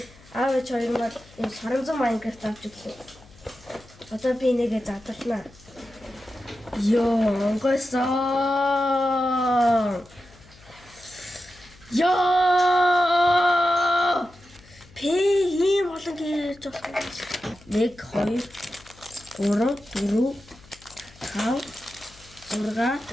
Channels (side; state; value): left; noise; hum, 25 dB below the sound